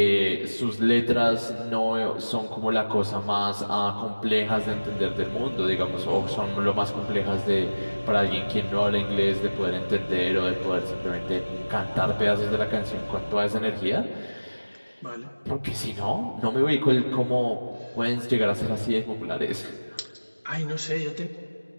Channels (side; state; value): both; inverted; correlation -1.00